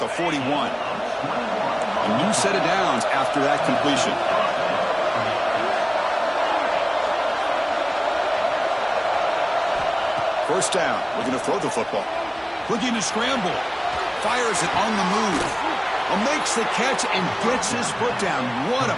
41. A new set of downs after that completion. First down, we're going to throw the football. Looking to scramble. Fires it on the move. Makes the catch and gets his foot down. What a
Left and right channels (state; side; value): identical; both; correlation 1.00